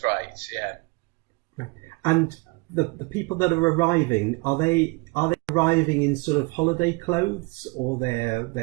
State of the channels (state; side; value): quieter; left; 27.4 dB